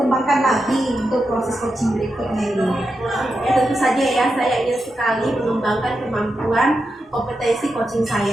lagi untuk proses coaching berikutnya ini? Ya, tentu saja ya, saya ingin sekali mengembangkan kemampuan kompetensi coaching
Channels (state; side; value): normal; both; correlation 0.88